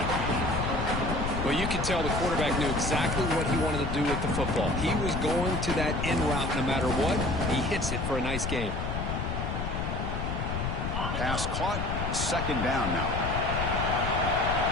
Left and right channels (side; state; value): left; noise; rumble, 2 dB below the sound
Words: Well, you could tell the quarterback knew exactly what he wanted to do with the football. He was going to that in route no matter what. He hits it for a nice gain. Pass caught. Second down now.